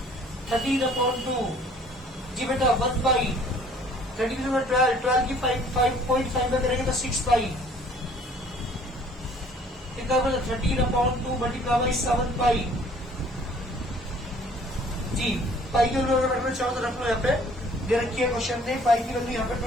13 अपॉन 2। जी बेटा 1 बाई 13 में 12 की 5.5 में करेंगे तो 6 पाई, कितना बना 13 अपॉन 2 मल्टीप्लाई बाई 7 पाई। जी पाई की वैल्यू रखना चाहो तो रख लो, यहाँ पे दे रखी है क्वेश्चन में, पाई की वैल्यू यहाँ पे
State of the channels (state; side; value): normal; both; correlation 0.55